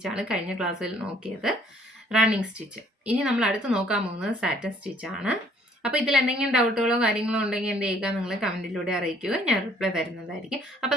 കഴിഞ്ഞ ക്ലാസ്സിൽ നോക്കിയത്, റണ്ണിങ് സ്റ്റിച്ച്. ഇനി നമ്മൾ അടുത്ത് നോക്കാൻ പോകുന്നത് സാറ്റൻ സ്റ്റിച്ചാണ്. അപ്പോൾ ഇതിൽ എന്തെങ്കിലും ഡൗട്ടുകളോ കാര്യങ്ങളോ ഉണ്ടെങ്കിൽ എന്ത് ചെയ്യുക, നിങ്ങൾ കമൻറ്റിലൂടെ അറിയിക്കുക, ഞാൻ റിപ്ലൈ തരുന്നതായിരിക്കും. അപ്പോൾ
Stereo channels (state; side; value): normal; both; correlation 0.61